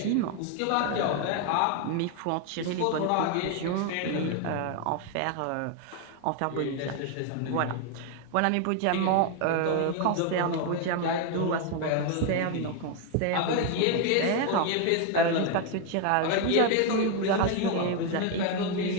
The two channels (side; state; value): both; different; correlation 0.01